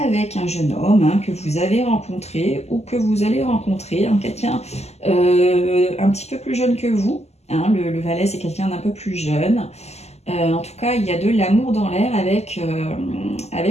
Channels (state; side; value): late; right; 0.31 ms